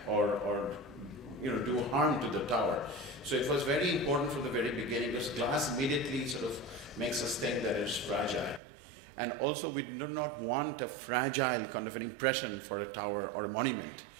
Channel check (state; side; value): drops out; left; at 8.6 s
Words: or do harm to the tower. So it was very important from the very beginning because glass immediately sort of makes us think that it's fragile. And also we do not want a fragile kind of an impression for a tower or monument.